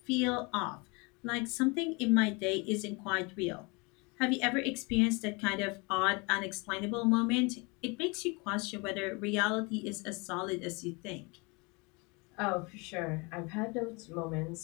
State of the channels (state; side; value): quieter; right; 28.6 dB